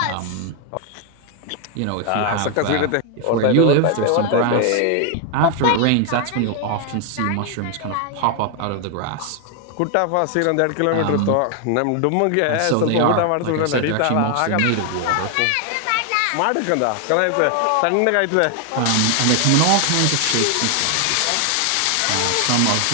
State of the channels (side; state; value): both; different; correlation 0.00